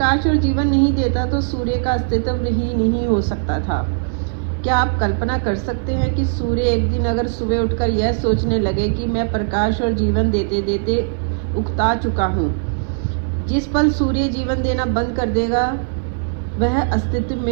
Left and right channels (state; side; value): silent; left; 64 dB below the other